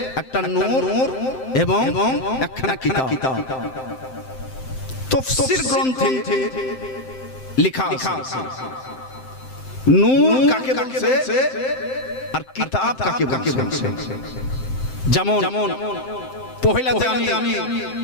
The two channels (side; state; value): right; late; 7.7 ms